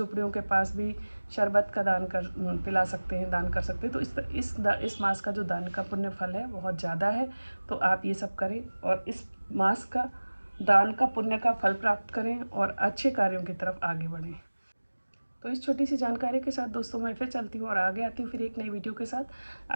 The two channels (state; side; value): inverted; both; correlation -1.00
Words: के पास भी शरबत का दान कर पिला सकते हैं, दान कर सकते हैं। तो इस मास का जो दान का पुण्य फल है बहुत ज़्यादा है, तो आप ये सब करें और इस मास का दान का पुण्य का फल प्राप्त करें और अच्छे कार्यों की तरफ आगे बढ़ें। तो इस छोटी सी जानकारी के साथ दोस्तों मैं फिर चलती हूँ और आगे आती हूँ फिर एक नई वीडियो के साथ।